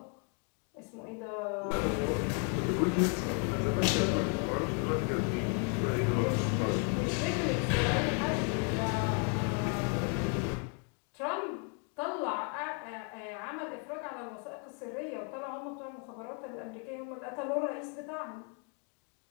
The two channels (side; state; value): right; quieter; 37.0 dB